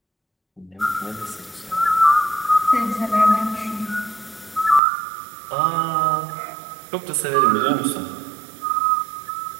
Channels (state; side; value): drops out; left; at 4.8 s